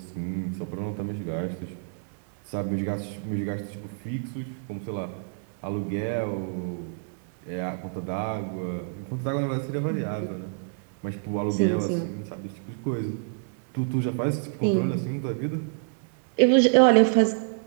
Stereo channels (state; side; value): silent; left; digital silence